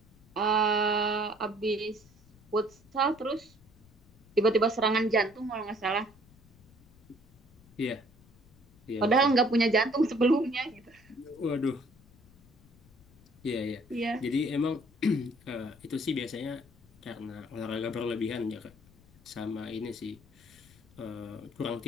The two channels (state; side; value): noise; left; rumble, 27 dB below the sound